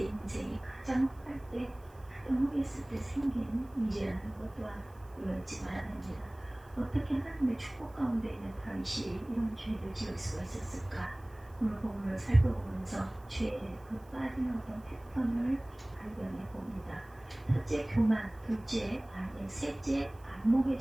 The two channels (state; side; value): noise; right; hiss, 29 dB below the sound